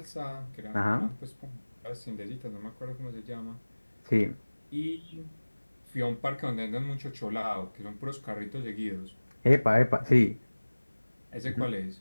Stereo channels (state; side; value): inverted; both; correlation -1.00